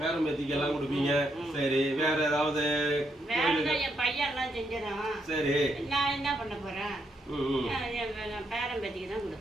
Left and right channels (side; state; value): both; normal; correlation 0.78